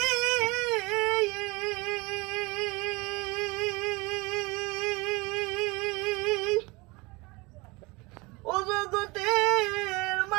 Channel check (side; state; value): left; quieter; 25.3 dB